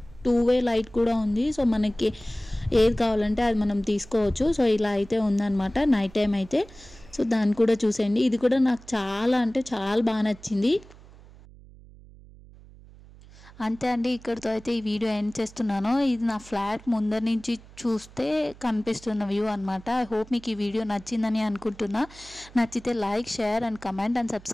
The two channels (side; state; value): right; noise; hum, 21 dB below the sound